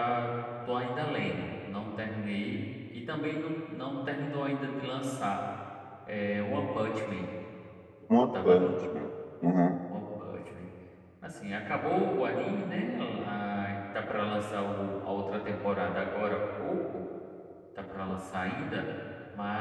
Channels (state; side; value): identical; both; correlation 1.00